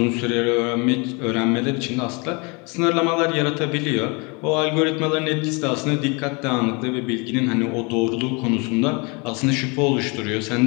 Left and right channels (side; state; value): right; quieter; 30.2 dB